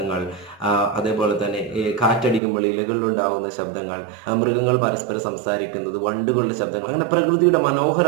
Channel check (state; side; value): drops out; left; at 2.4 s